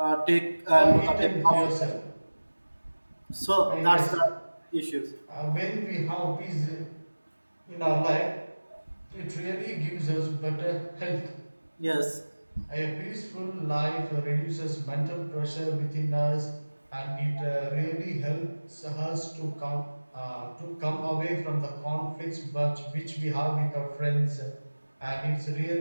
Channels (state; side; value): inverted; both; correlation -1.00